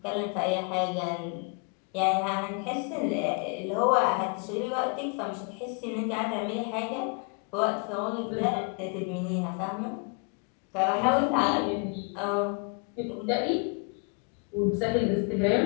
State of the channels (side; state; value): right; quieter; 37.3 dB